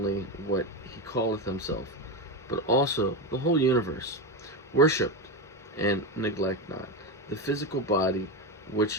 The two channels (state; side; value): normal; both; correlation 0.15